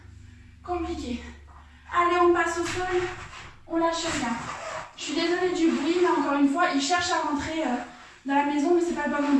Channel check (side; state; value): both; identical; correlation 1.00